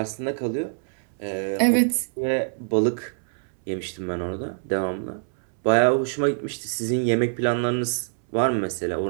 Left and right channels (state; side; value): silent; left; 62 dB below the other